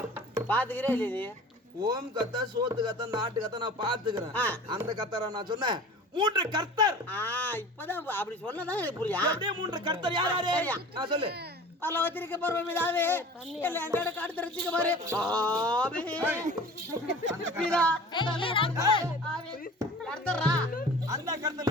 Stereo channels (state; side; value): normal; both; correlation 0.41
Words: பாத்துக்கிறே இல்ல நீ? ஓம் கத்தா, சோத்து கத்தா, நாட்டு கத்தா நான் பாத்துக்கிறேன். அந்த கத்தரா நான் சொன்னேன். 3 கர்த்தர். இப்பதான் அப்படி சொன்னதான் எனக்கு புரியா? அப்படியே 3 கர்த்தர் யார் யாரு? நான் சொல்லு. பல்லவத்திற்கு பருவமிதாவே இல்ல எங்கட காடு தெரிஞ்சுக்க பாரு. அந்த